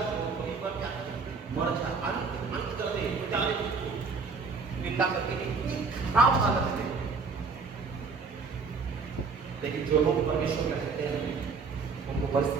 वहीं पर क्या मर जा, अंत कर दे, मिटा दे उसको, निंदा करके। इतनी खराब हालत है। लेकिन जो लोग परमेश्वर में रहते हैं उनको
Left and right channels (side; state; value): left; quieter; 4.8 dB